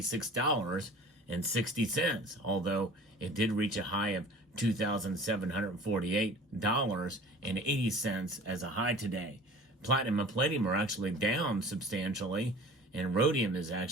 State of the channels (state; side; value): normal; both; correlation 0.44